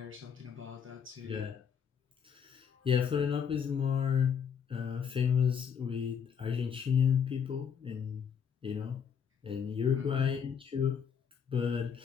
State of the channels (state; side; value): quieter; right; 7.2 dB